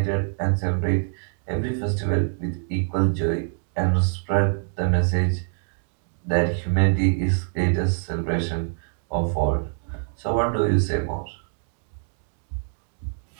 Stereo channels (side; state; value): left; silent; digital silence